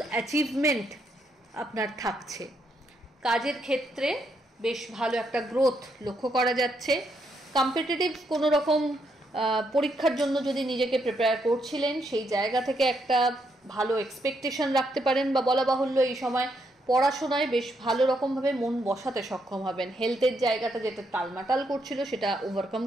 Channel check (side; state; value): both; normal; correlation 0.77